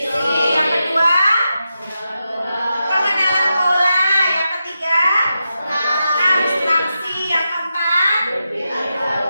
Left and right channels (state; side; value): inverted; both; correlation -0.88